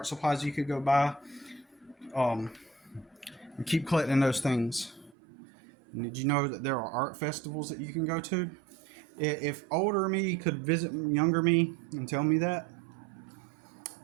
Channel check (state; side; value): drops out; left; at 5.2 s